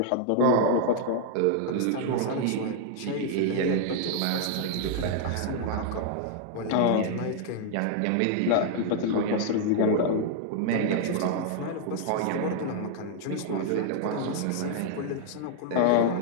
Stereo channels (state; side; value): different; both; correlation 0.00